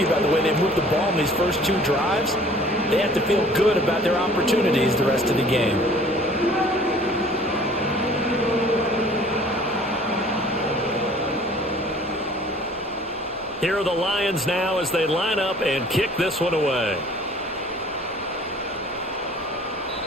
by the way they moved the ball in these first 2 drives. They have to feel good about their opportunities the rest of the game. Here are the Lions now as they line up and kick this one away.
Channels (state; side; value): normal; both; correlation 0.51